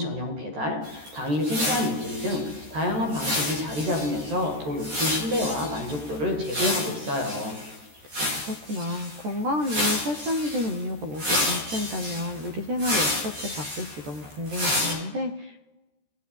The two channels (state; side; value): late; left; 13 ms